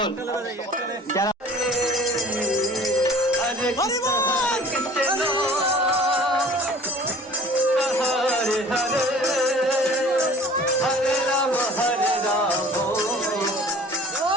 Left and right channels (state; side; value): normal; both; correlation 0.48